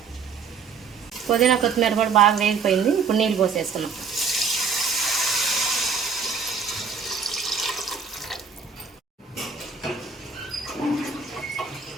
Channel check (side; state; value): left; quieter; 5.6 dB